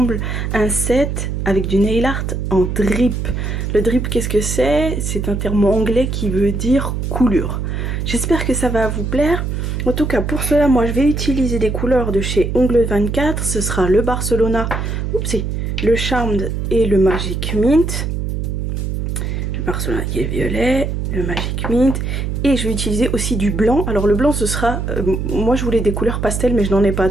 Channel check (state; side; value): noise; right; hum, 2 dB below the sound